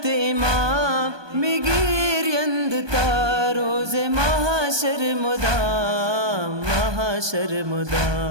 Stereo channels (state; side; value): late; left; 1.2 ms